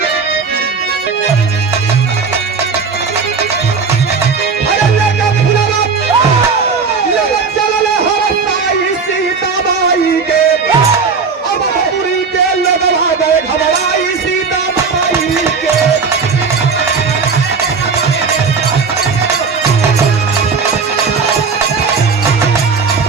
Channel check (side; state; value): left; quieter; 5.1 dB